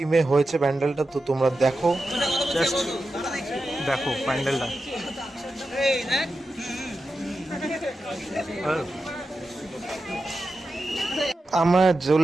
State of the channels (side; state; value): both; normal; correlation 0.91